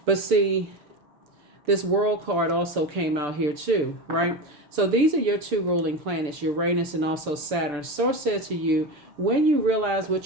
But see, this world card also came out here too, right? So these are your two ruling planets, Uranus and also Saturn. Source said to you, when you realize what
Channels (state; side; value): late; left; 6.9 ms